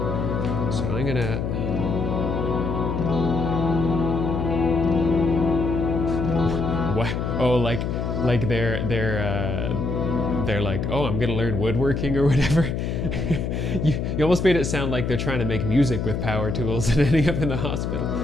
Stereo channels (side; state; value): left; noise; hum, 2 dB below the sound